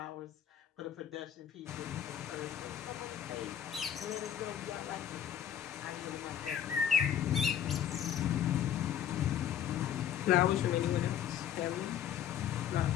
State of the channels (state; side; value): quieter; right; 9.7 dB